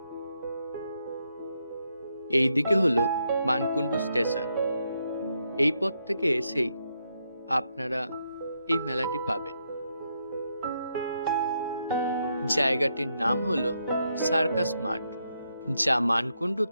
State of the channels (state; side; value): inverted; both; correlation -0.79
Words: এই দিকে হলো মানকুণ্ডু স্টেশন। এই পথ থেকে এসেই আপনারা এই মেলাটি পাবেন। জায়গাটির নাম হলো সার্কাস মাঠ, যা